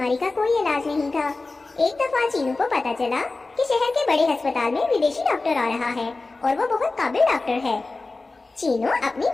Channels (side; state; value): right; quieter; 3.5 dB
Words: का कोई इलाज नहीं था। एक दफा चीनू को पता चला कि शहर के बड़े अस्पताल में विदेशी डॉक्टर आ रहा है और वो बहुत काबिल डॉक्टर है। चीनू अपनी